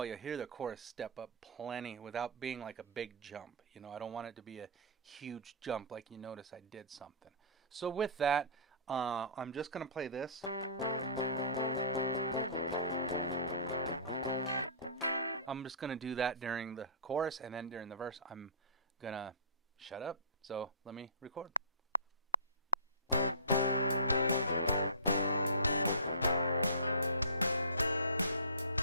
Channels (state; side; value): inverted; both; correlation -0.35